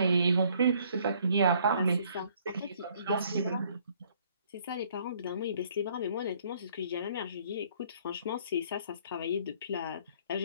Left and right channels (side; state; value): both; inverted; correlation -0.62